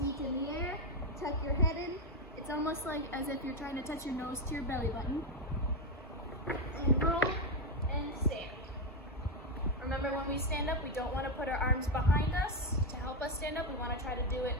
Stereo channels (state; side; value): normal; both; correlation 0.07